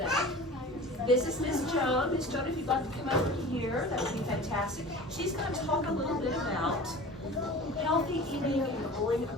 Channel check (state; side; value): normal; both; correlation 0.38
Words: This is Miss Joan. Miss Joan, if you'd like to come over here, that would be fantastic. She's going to talk a little bit about healthy eating and growing a